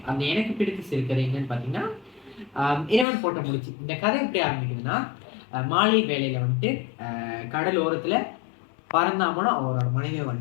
அந்த எனக்கு பிடித்த சிறுகதை என்னன்னு பார்த்தீங்கன்னா இறைவன் போட்ட முடிச்சு. இந்த கதை எப்படி ஆரம்பிக்குதுன்னா, மாலை வேலையில வந்துட்டு கடலோரத்துல பரந்தாமனும் அவரோட மனைவியை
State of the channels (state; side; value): drops out; right; at 3.1 s